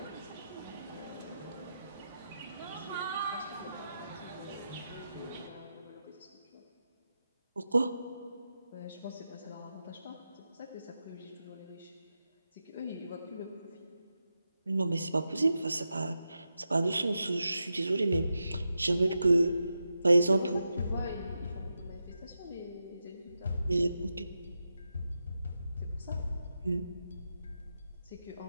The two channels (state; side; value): inverted; both; correlation -0.88